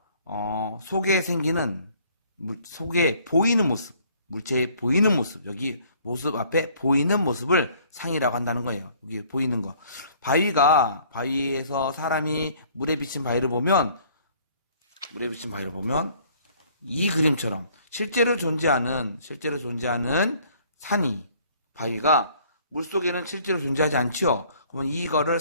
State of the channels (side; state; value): both; inverted; correlation -0.58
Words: 속에 생기는 속에 보이는 모습, 물체에 보이는 모습, 여기 모습 앞에 보이는 모습을 상이라고 한다는 거예요. 여기 보이는 거. 바위에서 사람이 물에 비친 바위를 보면 이 그림처럼 실제로 존재하는 산이, 바위가 물속에는 실제로 존재하지 않죠. 그러면 이거를